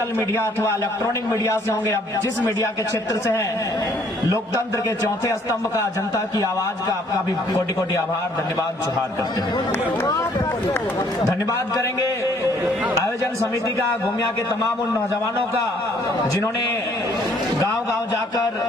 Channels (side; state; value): both; normal; correlation 0.63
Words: मीडिया अथवा इलेक्ट्रॉनिक मीडिया से होंगे, अब जिस मीडिया के क्षेत्र से है, लोकतंत्र के चौथे स्तंभ का, जनता की आवाज का आपका भी कोटि कोटि आभार, धन्यवाद जोहार करते हैं। धन्यवाद करेंगे आयोजन समिति का, गोमिया के तमाम उन नौजवानों का जिन्होंने गांव गांव जाकर,